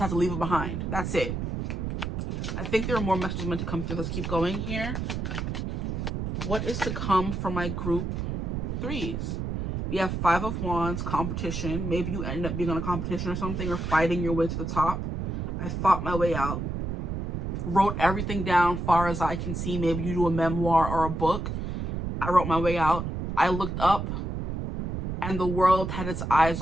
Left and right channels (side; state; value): right; noise; rumble, 3 dB below the sound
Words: to leave it behind. That's it. I think there are more messages meant to come through. Let's keep going here. What is to come for my group threes? We have Five of Wands, competition. Maybe you end up being on a competition or something, or fighting your way to the top. I fought my way out. Wrote everything down far as I can see. Maybe you do a memoir or a book. I wrote my way out. I looked up and the world had its eyes